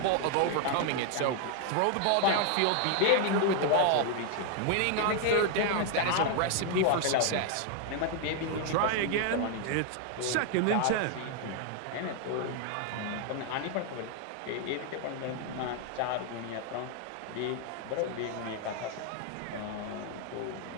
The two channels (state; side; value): different; both; correlation 0.00